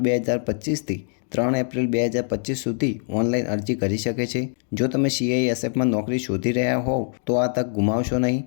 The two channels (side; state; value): right; silent; 57 dB below the other